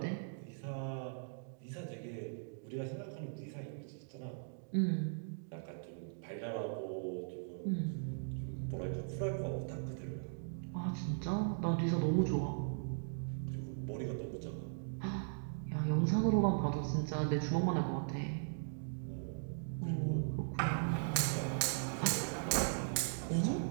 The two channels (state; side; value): silent; left; digital silence